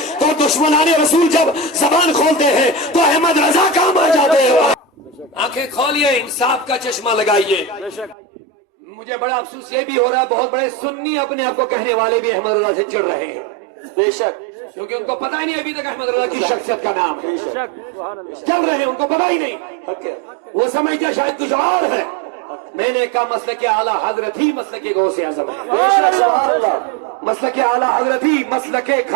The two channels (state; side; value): drops out; left; at 8.2 s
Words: تو دشمنان رسول جب زبان کھولتے ہیں تو احمد رضا کام آ جاتے ہیں۔ آنکھیں کھولیے، انصاف کا چشمہ لگائیے۔ مجھے بڑا افسوس یہ بھی ہو رہا ہے بہت بڑے سنی اپنے آپ کو کہنے والے بھی احمد رضا سے چڑھ رہے ہیں، بے شک، کیونکہ ان کو پتہ ہی نہیں ابھی تک احمد رضا کی شخصیت کا نام ہے، چل رہے ہیں ان کو پتہ ہی نہیں، وہ سمجھتے شاید کچھ اور ہے۔ میں نے کہا مسلک اعلیٰ حضرت ہی مسلک غوث اعظم ہے، مسلک اعلیٰ حضرت ہی مسلک